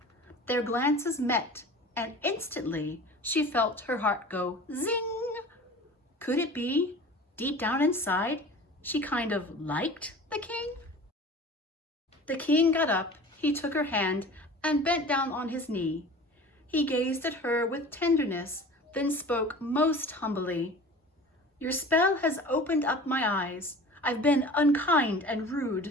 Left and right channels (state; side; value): normal; both; correlation 0.40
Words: Their glances met, and instantly she felt her heart go zing. Could it be, deep down inside, she kind of liked the king? The king got up, he took her hand, and bent down on his knee. He gazed at her with tenderness, then spoke most humbly. Your spell has opened up my eyes. I've been unkind and